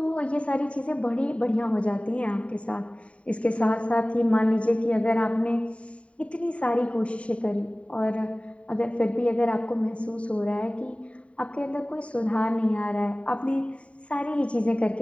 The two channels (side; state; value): right; late; 0.063 ms